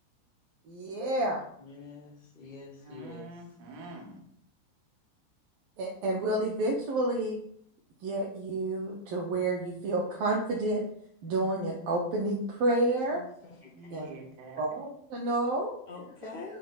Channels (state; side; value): late; left; 12 ms